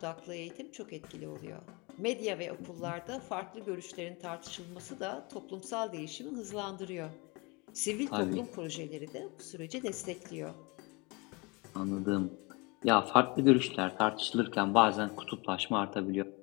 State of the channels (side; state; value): right; quieter; 27.7 dB